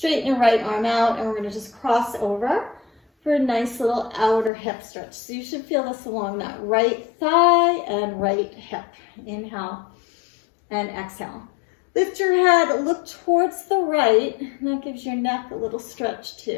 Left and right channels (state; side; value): drops out; right; at 4.5 s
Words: your right arm out, and we're going to just cross over for a nice little outer hip stretch. So you should feel this along that right thigh and right hip. Inhale and exhale. Lift your head, look towards the right, and that gives your neck a little stretch too.